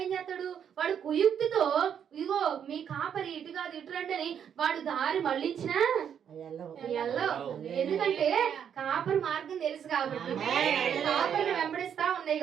ఏం చేస్తాడు? వాడు కుయుక్తితో, ఇగో మీ కాపరి ఇటు కాదు ఇటు రండి అని వాడు దారి మళ్ళించినా ఎందుకంటే కాపరి మార్గం తెలుసు కాబట్టి, కాపరిని వెంబడిస్తా ఉన్నాయి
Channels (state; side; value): quieter; left; 8.4 dB